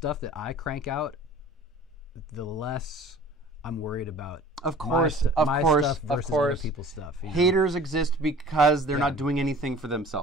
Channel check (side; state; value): both; normal; correlation 0.45